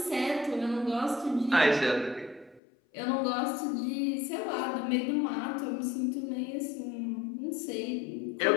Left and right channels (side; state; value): right; drops out; at 2.6 s